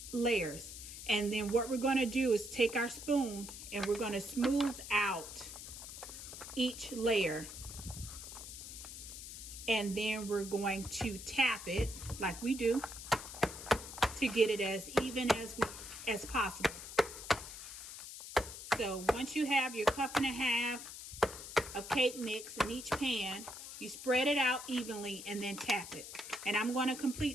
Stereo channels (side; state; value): left; noise; hiss, 11 dB below the sound